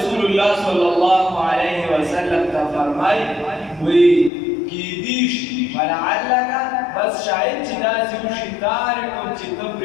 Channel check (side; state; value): right; drops out; at 4.3 s